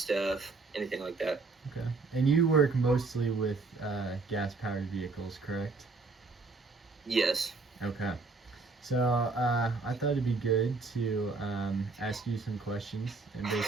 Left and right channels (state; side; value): quieter; left; 3.9 dB